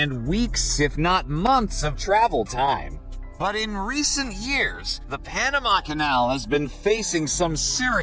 weeks, if not months, of travel time. But in recent years, the Panama Canal has been facing some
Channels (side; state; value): both; identical; correlation 1.00